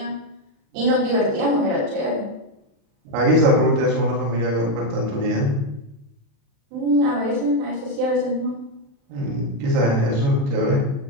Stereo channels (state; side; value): late; left; 35 ms